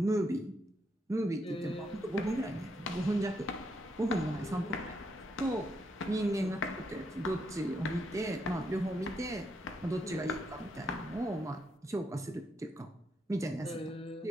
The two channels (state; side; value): normal; both; correlation 0.78